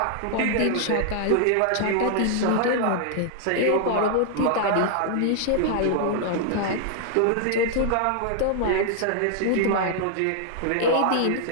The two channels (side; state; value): both; different; correlation 0.00